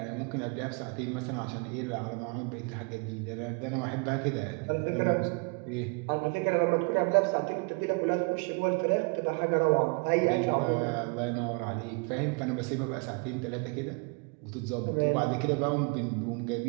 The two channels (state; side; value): quieter; left; 34.1 dB